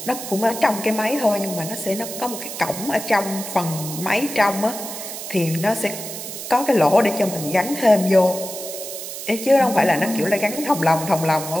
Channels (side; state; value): right; noise; hiss, 9 dB below the sound